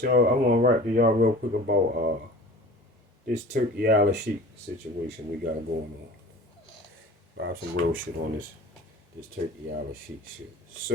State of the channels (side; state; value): both; normal; correlation 0.41